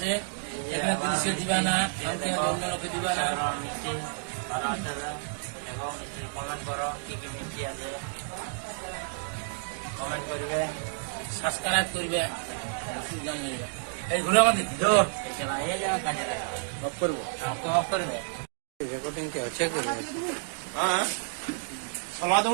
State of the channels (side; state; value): left; silent; digital silence